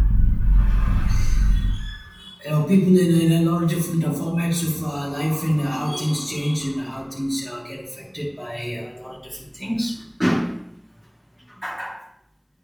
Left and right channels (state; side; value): identical; both; correlation 1.00